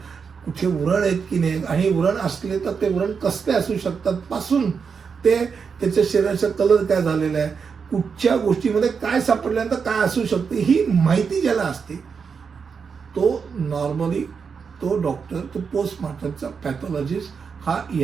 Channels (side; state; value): left; quieter; 5.9 dB